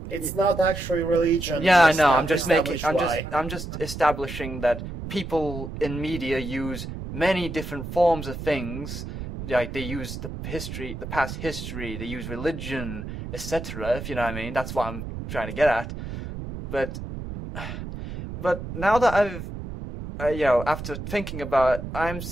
It's not actually religion. Yeah, I know. I'm just establishing that people in media use many different forms of things. Like, they use the past history, they use religion, etc. If you know what I mean. That's what I'm trying to get at. But now that I've, after thinking about it,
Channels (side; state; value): right; noise; rumble, 8 dB below the sound